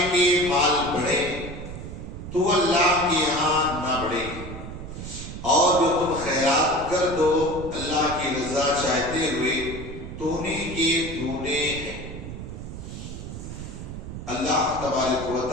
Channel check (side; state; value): right; noise; rumble, 9 dB below the sound